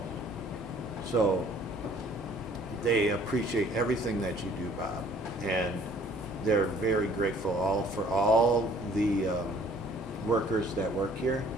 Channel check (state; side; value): normal; both; correlation 0.57